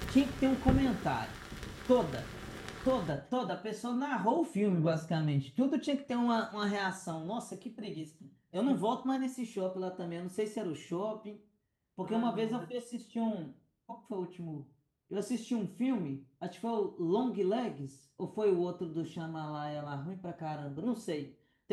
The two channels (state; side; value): identical; both; correlation 1.00